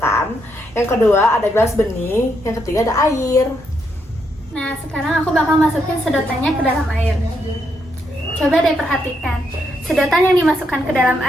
yang kedua ada gelas bening, yang ketiga ada air. Nah, sekarang aku bakal masukin sedotannya ke dalam air. Coba deh perhatikan. Sedotan yang dimasukkan ke dalam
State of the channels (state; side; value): normal; both; correlation 0.78